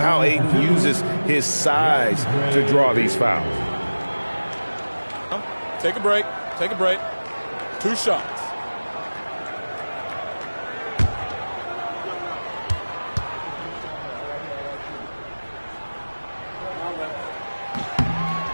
Ayton uses his size to draw these fouls. Take a break. Take a break. 2 shots.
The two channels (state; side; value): inverted; both; correlation -1.00